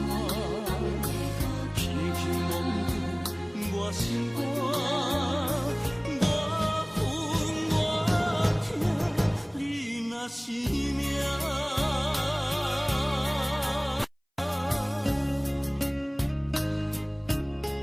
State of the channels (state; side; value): identical; both; correlation 1.00